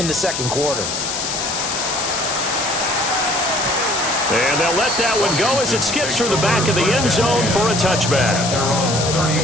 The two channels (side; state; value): left; noise; hiss, 3 dB below the sound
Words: the second quarter. And they'll let that one go as it skips through the back of the end zone for a touchback. Their own